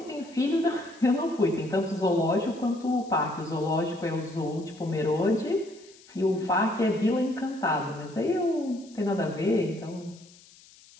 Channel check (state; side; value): noise; left; hiss, 24 dB below the sound